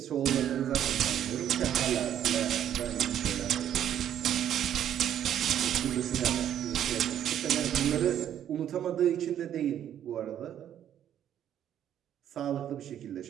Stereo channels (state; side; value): quieter; left; 10.4 dB